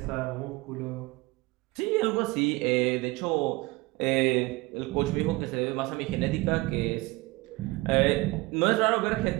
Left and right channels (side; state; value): left; quieter; 22.3 dB